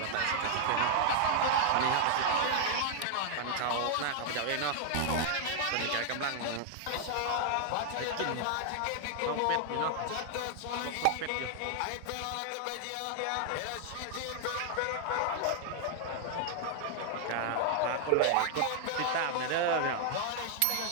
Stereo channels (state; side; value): different; both; correlation 0.00